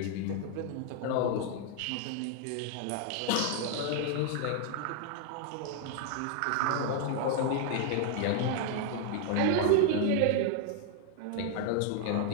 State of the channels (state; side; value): different; both; correlation 0.00